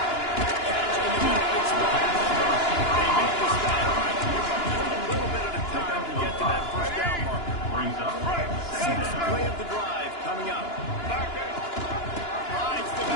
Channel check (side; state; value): right; late; 2.9 ms